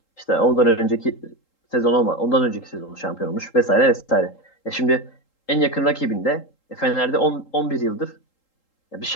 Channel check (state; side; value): late; right; 3.8 ms